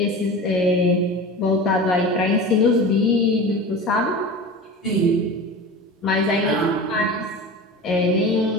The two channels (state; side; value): normal; both; correlation 0.33